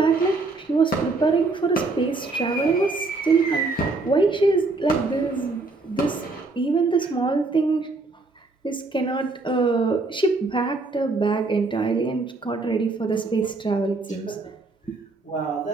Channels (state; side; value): quieter; left; 3.5 dB